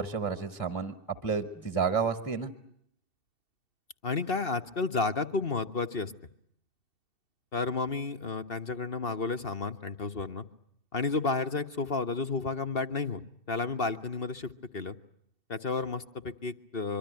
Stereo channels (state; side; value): late; right; 2.7 ms